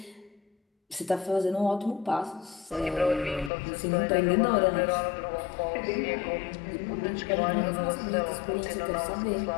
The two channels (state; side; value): drops out; right; at 3.5 s